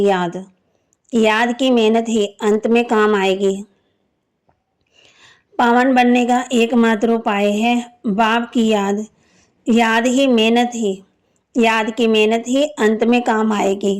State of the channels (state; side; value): identical; both; correlation 1.00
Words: याद। याद की मेहनत ही अंत में काम आएगी। पावन बनने का एकमात्र उपाय है बाप की याद। याद की मेहनत ही अंत में काम आएगी।